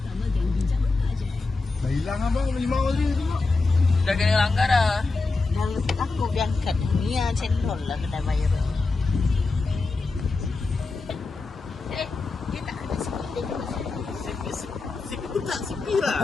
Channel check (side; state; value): right; quieter; 3.8 dB